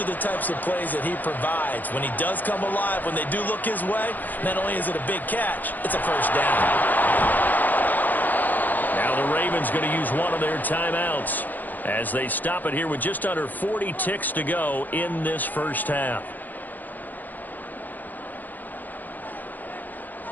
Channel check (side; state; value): right; late; 0.085 ms